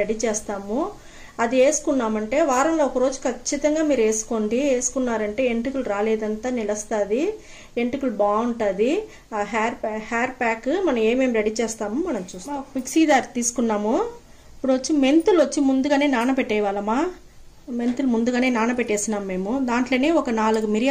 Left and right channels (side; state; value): both; identical; correlation 1.00